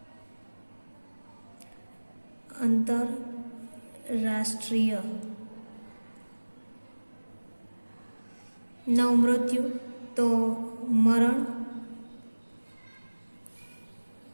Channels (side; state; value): both; inverted; correlation -1.00